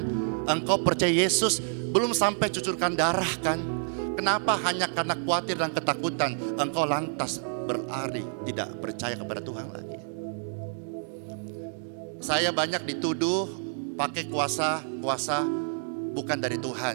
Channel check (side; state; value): left; silent; digital silence